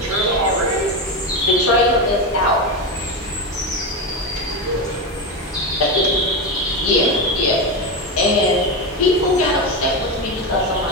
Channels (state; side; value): normal; both; correlation 0.15